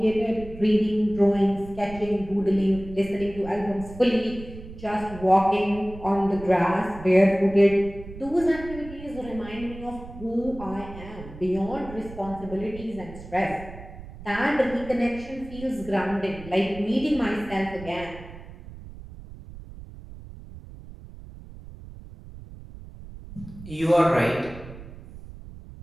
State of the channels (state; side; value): noise; right; rumble, 15 dB below the sound